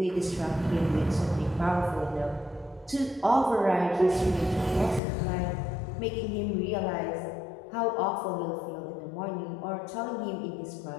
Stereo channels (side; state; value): right; drops out; at 5.0 s